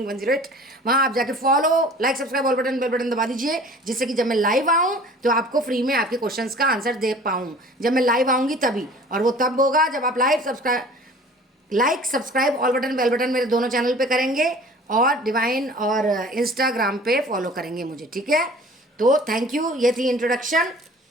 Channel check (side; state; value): both; normal; correlation 0.46